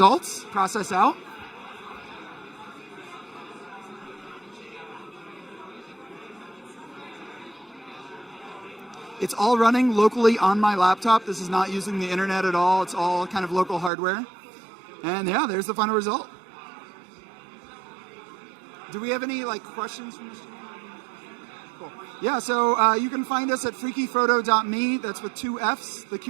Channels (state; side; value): drops out; left; at 13.9 s